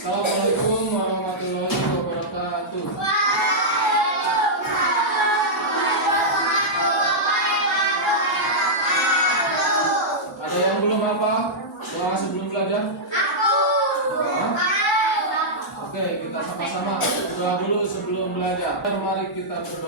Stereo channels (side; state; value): both; normal; correlation -0.10